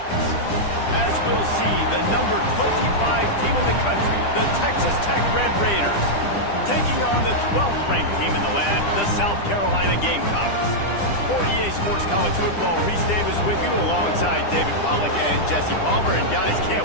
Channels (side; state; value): right; late; 10 ms